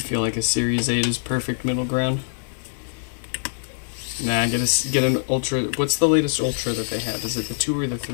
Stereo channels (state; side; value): silent; right; 56 dB below the other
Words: like a Series 8 is perfect middle ground? Nah, get an Ultra. What's the latest Ultra that they have? Is it the 2 or the